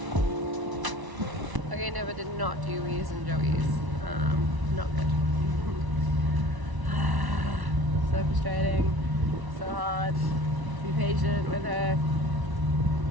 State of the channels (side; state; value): left; late; 1.0 ms